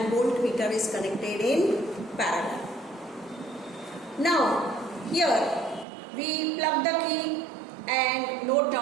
voltmeter is connected in parallel. Now here we plug the key and note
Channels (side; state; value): left; drops out; at 5.9 s